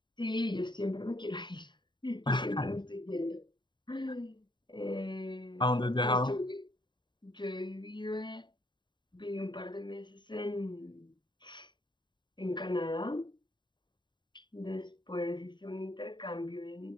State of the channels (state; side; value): late; right; 0.22 ms